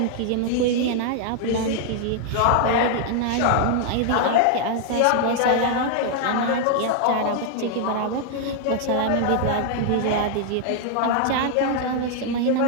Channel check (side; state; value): both; different; correlation 0.00